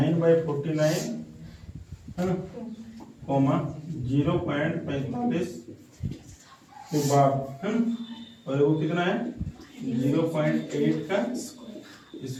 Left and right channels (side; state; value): both; identical; correlation 1.00